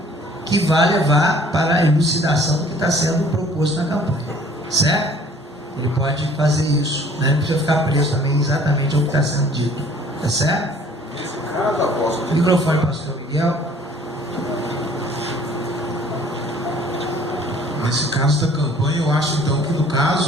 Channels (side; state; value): both; normal; correlation 0.55